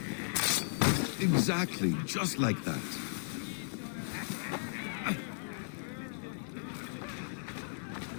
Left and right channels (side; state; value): right; silent; digital silence